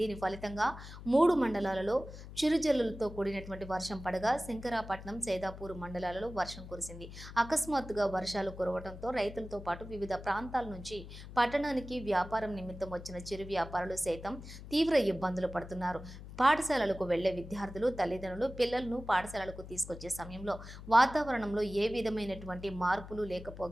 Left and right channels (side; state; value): left; noise; hum, 13 dB below the sound